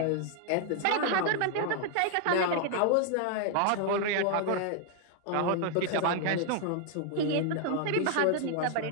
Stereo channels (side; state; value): both; different; correlation 0.00